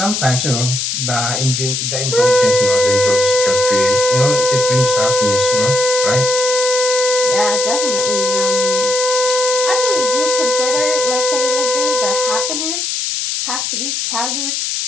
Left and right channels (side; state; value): left; noise; hiss, 2 dB below the sound